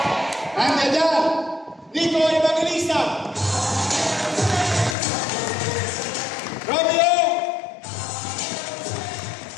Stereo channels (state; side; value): drops out; right; at 5.0 s